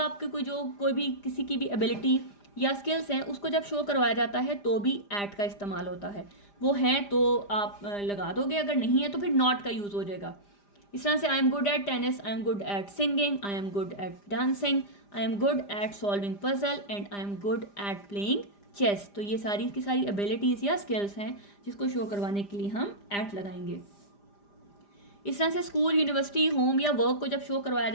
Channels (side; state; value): right; late; 5.0 ms